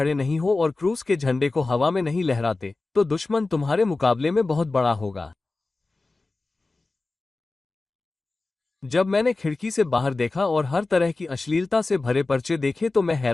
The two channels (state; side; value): quieter; right; 3.4 dB